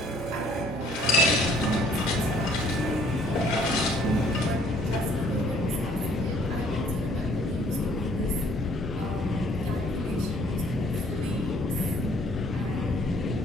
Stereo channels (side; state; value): both; normal; correlation 0.60